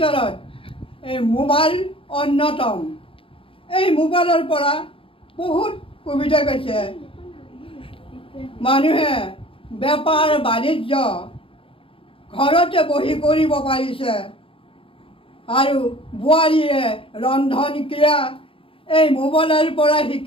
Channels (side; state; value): right; late; 0.26 ms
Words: এই মোবাইল অন্যতম। এই মোবাইলৰ পৰা বহুত সুবিধা পাইছে। মানুহে বেপাৰ বাণিজ্য ঘৰতে বহি কৰিব পাৰিছে আৰু বোৱাৰীয়ে ৰন্ধন ক্ৰিয়া এই মোবাইলৰ পৰা